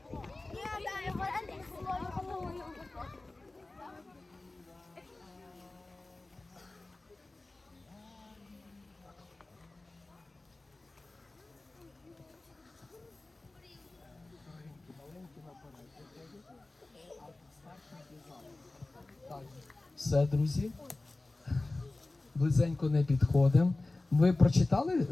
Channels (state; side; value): quieter; right; 3.0 dB